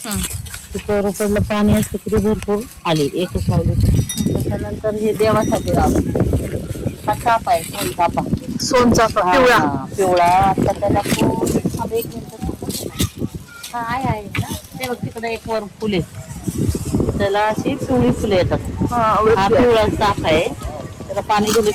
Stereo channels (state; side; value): identical; both; correlation 1.00